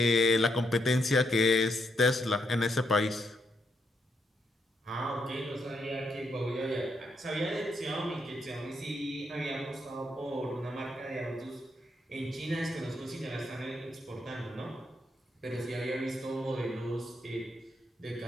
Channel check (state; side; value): normal; both; correlation 0.78